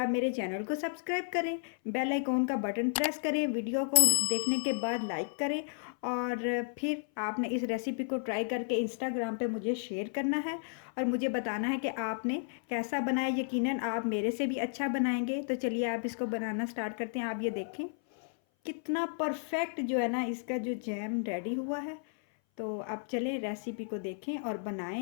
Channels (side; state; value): right; silent; 56 dB below the other